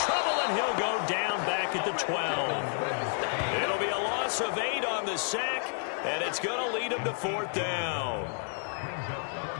trouble, and he'll go down back at the 12. It'll be a loss of 8 on the sack, and it's going to lead him to 4th down.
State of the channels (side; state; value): right; silent; 58 dB below the other